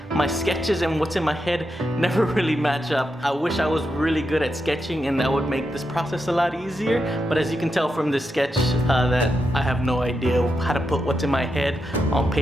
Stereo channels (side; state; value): both; normal; correlation 0.85